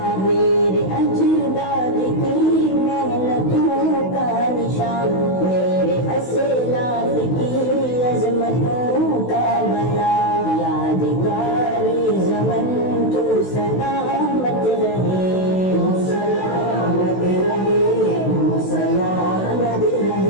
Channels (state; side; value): late; right; 16 ms